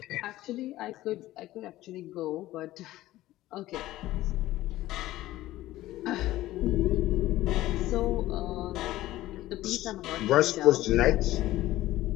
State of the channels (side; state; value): right; quieter; 15.9 dB